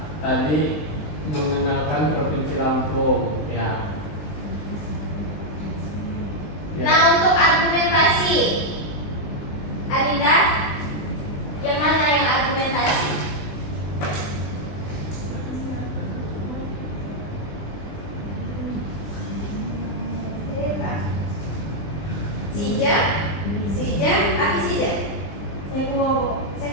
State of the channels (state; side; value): late; right; 20 ms